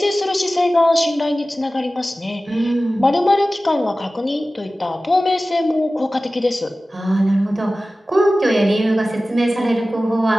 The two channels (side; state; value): both; normal; correlation 0.96